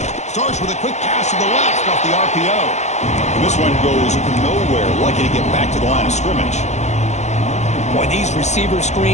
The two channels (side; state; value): right; late; 0.33 ms